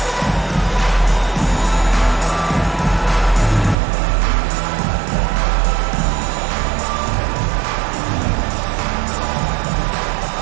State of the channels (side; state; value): left; drops out; at 3.8 s